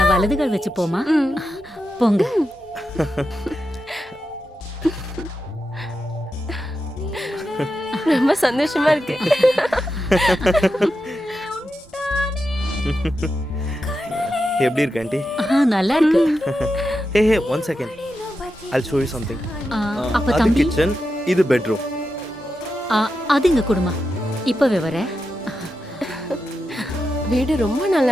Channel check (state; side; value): normal; both; correlation 0.89